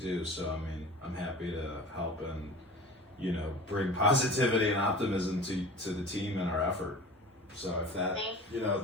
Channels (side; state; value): both; normal; correlation 0.38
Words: So I mean, I'm happy to help and bring positivity and optimism to the team and our effort. So if that,